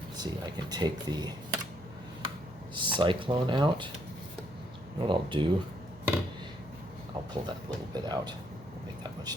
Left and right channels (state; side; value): normal; both; correlation 0.72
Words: Let's see, I can take the Cyclone out. You know what I'll do? I'll pull that little bit out. Won't make that much